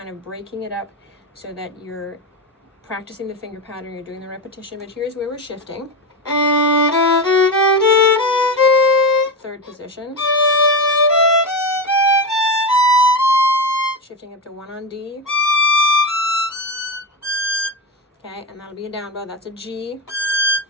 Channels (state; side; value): normal; both; correlation 0.16